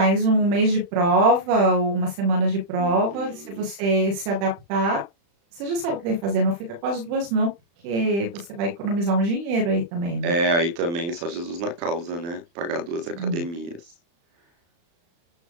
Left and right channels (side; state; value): left; late; 35 ms